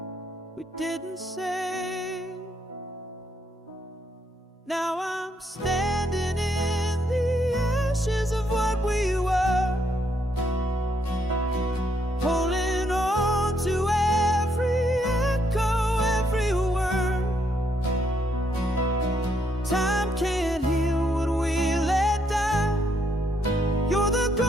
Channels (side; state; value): both; normal; correlation 0.74